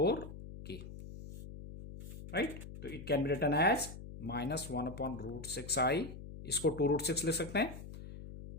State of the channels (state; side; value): noise; left; hum, 12 dB below the sound